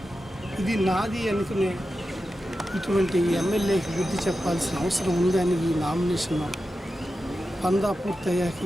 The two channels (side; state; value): both; normal; correlation 0.91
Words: ఇది నాది అనుకునే ఇటువంటి ఎమ్మెల్యేకి బుద్ధి చెప్పాల్సిన అవసరం ఉందని ఈ నామినేషన్ పందా పూర్తయ్యాక